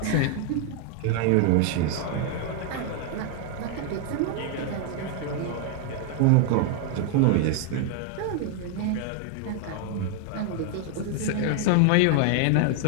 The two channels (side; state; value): both; different; correlation 0.00